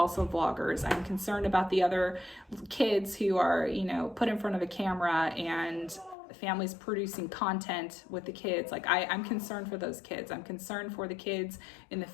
vloggers. I'm concerned about the other kids who are, you know, put in front of a camera and families producing content with the kids. Like I'm concerned for those kids. I'm concerned for the kids in the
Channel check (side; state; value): right; drops out; at 6.2 s